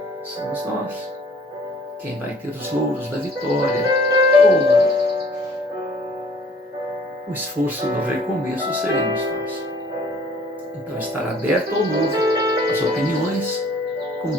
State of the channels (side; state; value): both; normal; correlation 0.54